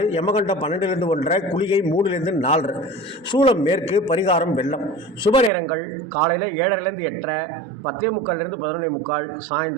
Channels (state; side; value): drops out; left; at 5.5 s